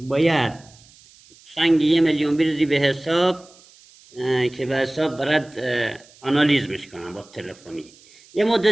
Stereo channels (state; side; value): noise; right; hiss, 26 dB below the sound